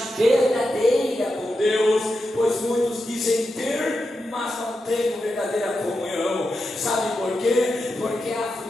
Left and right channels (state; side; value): normal; both; correlation 0.88